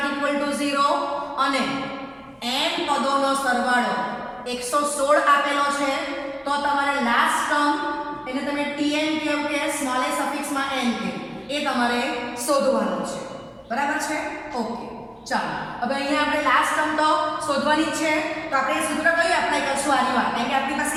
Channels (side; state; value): both; identical; correlation 1.00